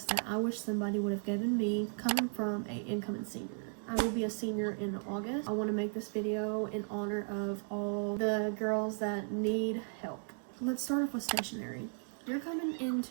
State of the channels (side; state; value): left; silent; 54 dB below the other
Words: that I wish somebody would have given me coming from an incoming senior. I will be a senior in August. I want to make this video in honor of all the girls that need help. Let's start off with stationery. You're coming